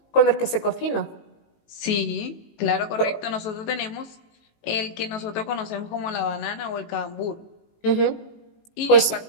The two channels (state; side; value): late; right; 18 ms